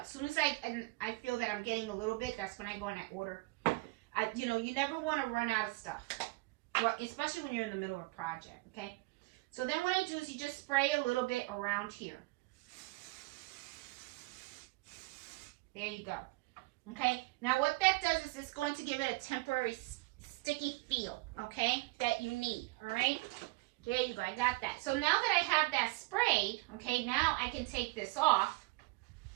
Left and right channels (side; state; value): left; quieter; 24.5 dB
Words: soon as I feel that I'm getting a little bit, that's when I go and I order. You know, you never want to run out of stuff, well, especially when you're in the middle of a project. Okay. So then what I do is you just spray a little bit around here. There you go. Okay. Now what that does is it's going to give it a temporary sticky feel. Okay, that you need. All right. There you go, I got that. So now that I have that sprayed, okay, now I can take this off,